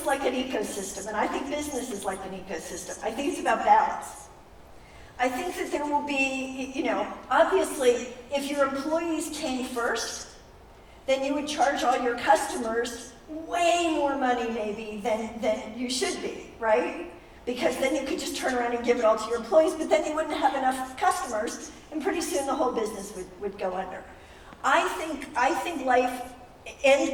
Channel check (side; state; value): both; identical; correlation 1.00